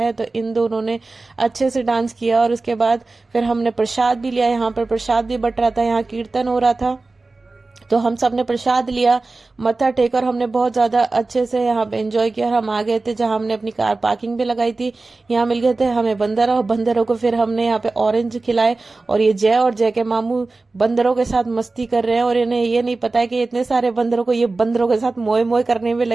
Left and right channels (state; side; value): quieter; left; 3.5 dB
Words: तो इन दोनों ने अच्छे से डांस किया। और उसके बाद फिर हमने प्रसाद भी लिया, यहाँ पर प्रसाद भी बट रहा था, यहाँ कीर्तन हो रहा था, तो हम सब ने प्रसाद लिया, मत्था टेक, और हमने बहुत ज्यादा अच्छे से यहाँ पे एंजॉय किया। और हम आ गए थे जहाँ हमने अपनी कार पार्किंग भी लगाई थी, यहाँ मिल गए थे हमें बंदरों को फिर हमने यहाँ पे ऑरेंज खिलाए। और ये जय और जय के मामू बंदरों के साथ मस्ती कर रहे हैं, और इन्हें ये नहीं पता है कि इतने सारे बंदरों को ये बंदरों के साथ मोए मोए करने में